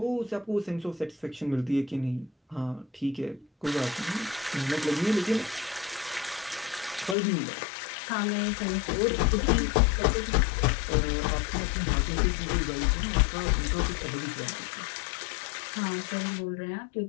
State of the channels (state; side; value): drops out; right; at 7.2 s